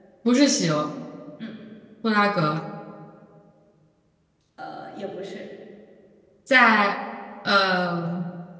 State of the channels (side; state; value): both; identical; correlation 1.00